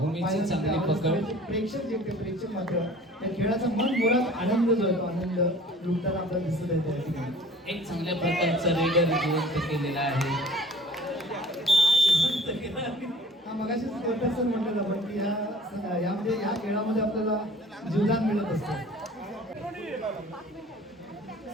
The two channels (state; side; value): normal; both; correlation 0.48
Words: चांगली पकड. प्रेक्षक मात्र त्या खेळाचा मन मुळात आनंद जो आहे तो आनंद लुटताना आपल्याला दिसत आहे. त्या ठिकाणी एक चांगल्या प्रकारचा रेडर जिवंत केलेला आहे. मगाशीच सर म्हटलं आपण की यामध्ये या खेळामध्ये आपल्याला जीवदान मिळत असतं.